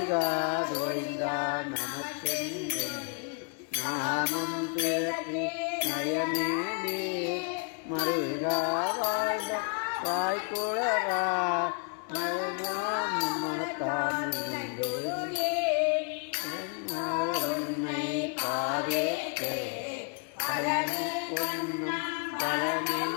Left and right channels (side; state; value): right; quieter; 37.7 dB